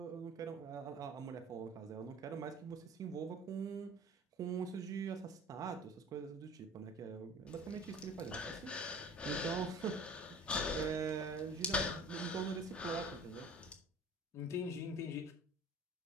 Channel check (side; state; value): both; normal; correlation 0.44